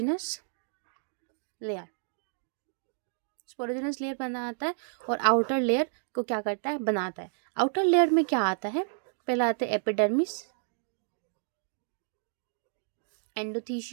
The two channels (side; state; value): left; silent; digital silence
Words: लेयर, स्पोरोजिनस लेयर बनाता है, और आउटर लेयर को क्या करता है, बनाता है। आउटर लेयर में क्या आता है, पहला आता है epidermis,